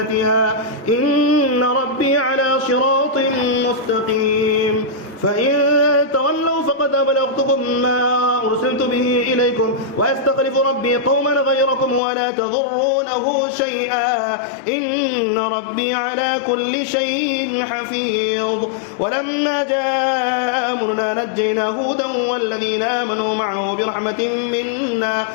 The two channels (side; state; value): right; drops out; at 12.0 s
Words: إن ربي على صراط مستقيم. فإن تولوا فقد أبلغتكم ما أرسلت به إليكم ويستخلف ربي قوما غيركم ولا تضرونه شيئا إن ربي على كل شيء حفيظ. ولما جاء أمرنا نجينا هودا والذين آمنوا معه برحمة منا